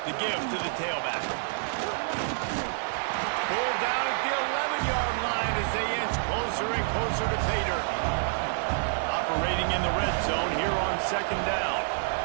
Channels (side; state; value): left; silent; digital silence